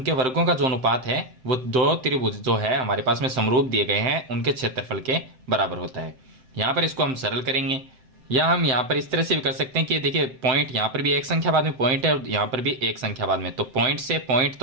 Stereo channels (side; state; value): left; late; 7.7 ms